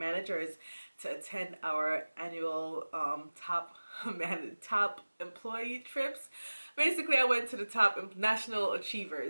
to attend our annual top employee trips. Basically, I went to the top National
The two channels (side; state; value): both; inverted; correlation -1.00